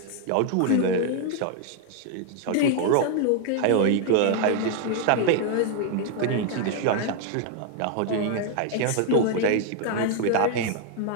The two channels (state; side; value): different; both; correlation 0.00